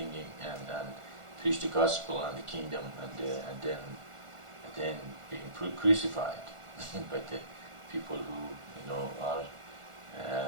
and preach the gospel and the kingdom and then being crucified by the people who are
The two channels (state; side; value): late; left; 1.4 ms